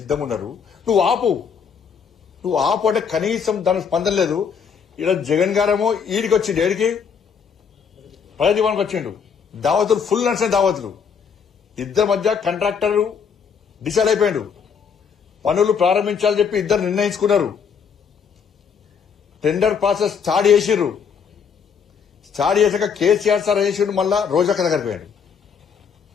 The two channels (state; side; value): quieter; right; 6.7 dB